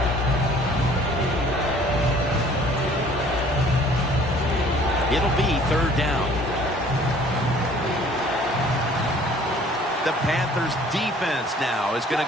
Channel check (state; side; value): normal; both; correlation 0.54